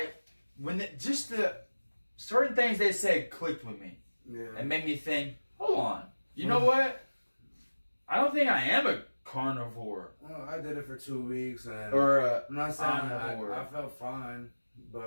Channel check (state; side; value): inverted; both; correlation -1.00